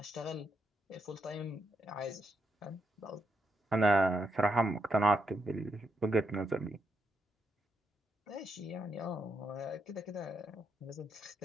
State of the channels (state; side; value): normal; both; correlation 0.80